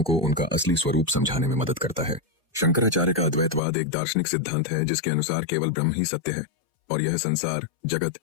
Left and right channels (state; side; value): drops out; right; at 3.6 s